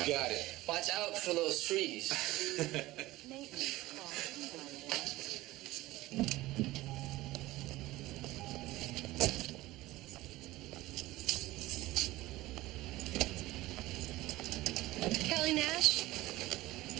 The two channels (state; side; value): quieter; left; 18.0 dB